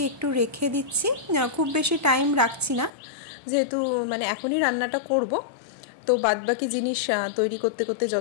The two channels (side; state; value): right; drops out; at 2.9 s